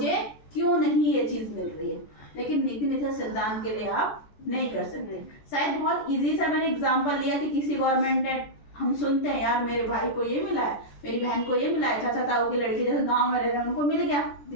क्यों नहीं ये चीज मिल रही है। लेकिन नीति निर्देशक सिद्धांत के लिए आप नहीं कर सकते। शायद बहुत इजी सा मैंने एग्जांपल लिया कि किसी गवर्नमेंट ने, हम सुनते हैं यार मेरे भाई को ये मिला है, मेरी बहन को ये मिला है, चाचा ताऊ की लड़की जैसे गांव में रह रहे हैं उनको मिल गया,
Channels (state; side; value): late; right; 14 ms